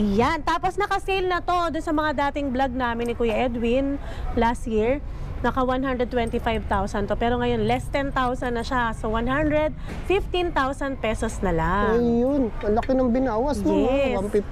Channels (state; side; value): identical; both; correlation 1.00